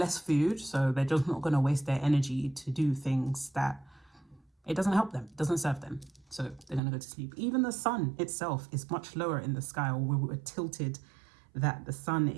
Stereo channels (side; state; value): left; drops out; at 6.8 s